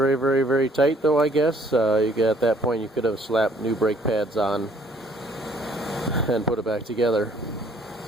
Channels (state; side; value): normal; both; correlation 0.61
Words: very, very tight, though, I guess, at that point you could have slapped new brake pads on and put it back together.